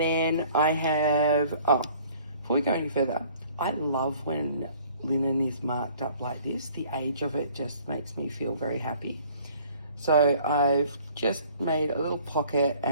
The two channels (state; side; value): inverted; both; correlation -0.54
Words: I have, before we go any further, I love when linen is marked up like this. The age of it just makes me feel very happy. So I've just made a little pocket